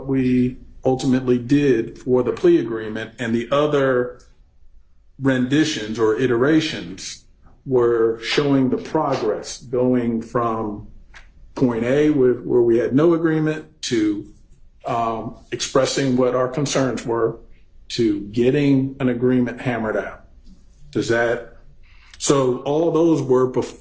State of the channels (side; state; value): both; identical; correlation 1.00